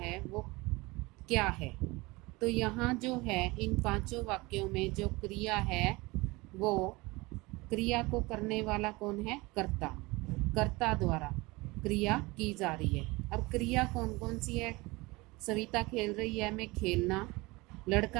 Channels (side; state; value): left; quieter; 23.1 dB